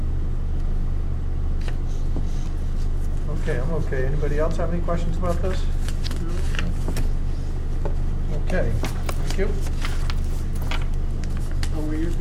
Okay, I'm okay. Anybody else have any questions about this? Okay, thank you. Are we at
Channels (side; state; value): both; identical; correlation 1.00